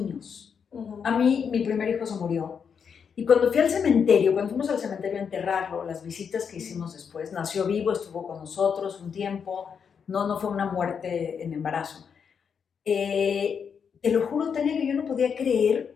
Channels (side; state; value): right; quieter; 6.8 dB